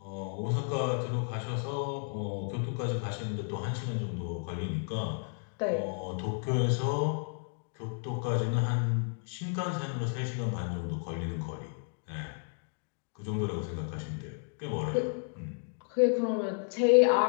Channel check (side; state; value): right; silent; 56 dB below the other